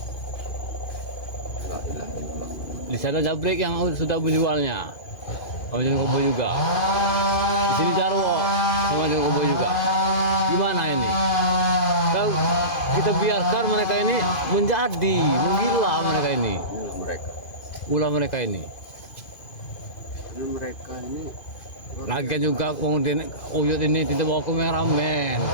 Di sana Jabrik yang sudah menjualnya, sama John Kobo juga. Di sini Jarwo sama John Kobo juga. Gimana ini? Kalau kita biarkan mereka ini menjadi menggila mereka ini. Inilah mereka. Ulah mereka ini. Karena mereka ini Lagi juga kemudian Uyut ini tidak bawa kameramen.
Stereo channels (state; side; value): late; right; 2.5 ms